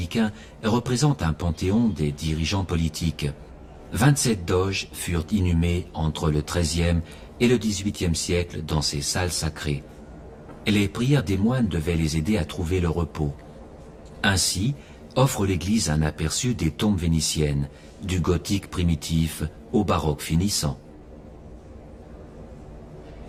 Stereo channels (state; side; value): identical; both; correlation 1.00